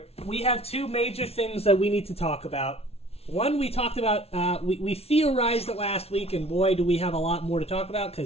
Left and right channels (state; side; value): late; right; 0.30 ms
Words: We have two major things that we need to talk about. One, we talked about, we theorized it last week, and boy, do we have a lot more to talk about,